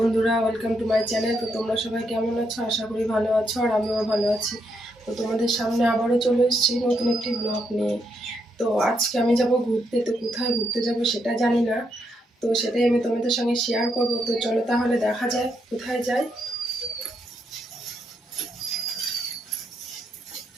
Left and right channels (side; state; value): both; normal; correlation 0.79